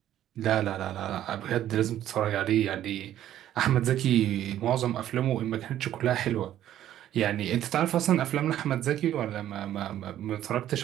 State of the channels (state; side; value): quieter; left; 12.0 dB